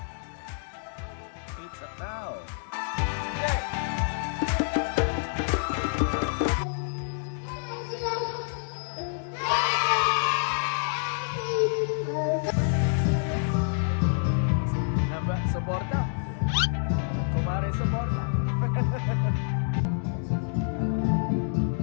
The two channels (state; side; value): silent; right; digital silence